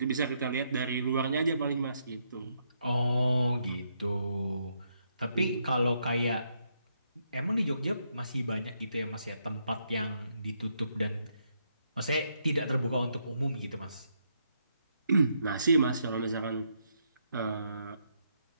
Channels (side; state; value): both; inverted; correlation -0.77